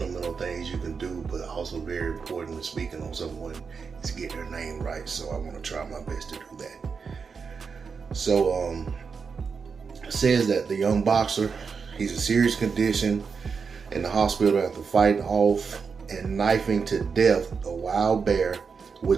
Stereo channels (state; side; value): quieter; left; 5.6 dB